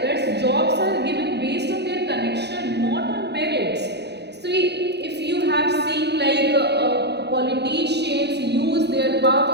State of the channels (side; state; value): left; late; 0.49 ms